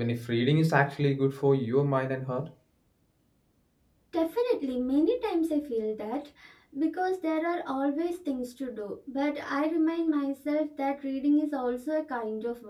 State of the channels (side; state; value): both; identical; correlation 1.00